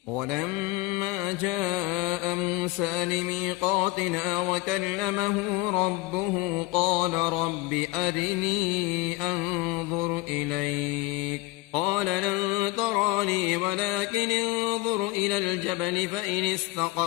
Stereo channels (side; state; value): right; quieter; 20.4 dB